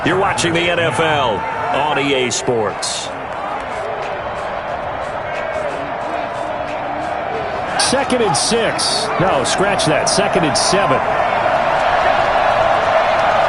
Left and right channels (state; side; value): identical; both; correlation 1.00